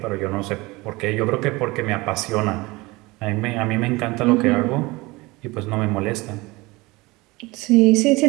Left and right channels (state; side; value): quieter; left; 22.5 dB